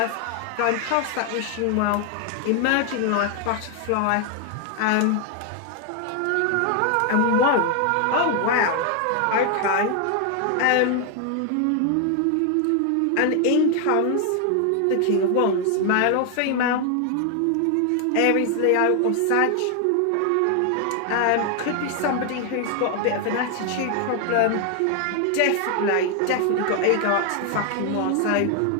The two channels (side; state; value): both; different; correlation 0.00